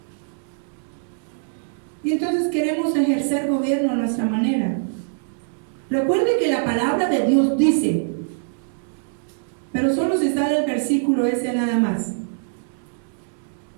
Y entonces queremos ejercer gobierno a nuestra manera. Recuerde que la palabra de Dios dice, pero solo se sale el versículo ese nada más.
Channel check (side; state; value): left; silent; 63 dB below the other